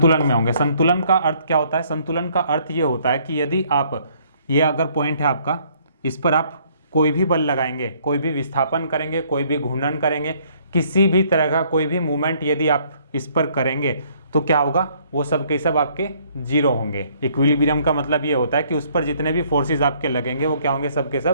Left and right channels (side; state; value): both; inverted; correlation -0.63